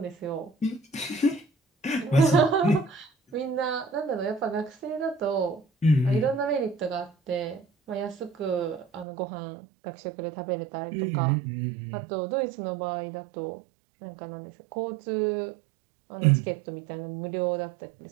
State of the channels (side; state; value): left; drops out; at 9.1 s